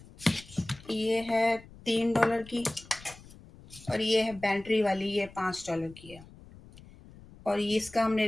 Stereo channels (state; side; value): noise; left; rumble, 21 dB below the sound